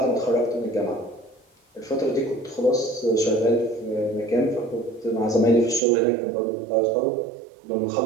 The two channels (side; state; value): left; drops out; at 5.8 s